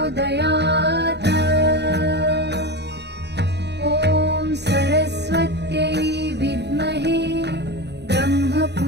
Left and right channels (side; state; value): left; late; 0.49 ms